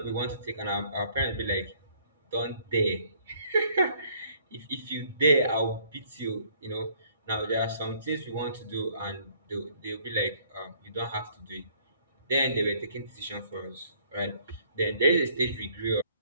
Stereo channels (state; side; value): inverted; both; correlation -0.61